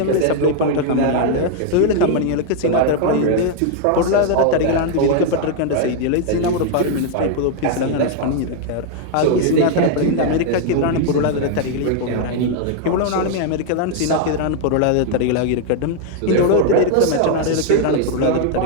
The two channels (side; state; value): both; different; correlation 0.00